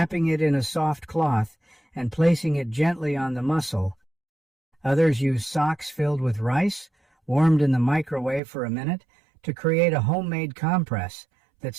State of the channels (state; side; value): drops out; left; at 8.4 s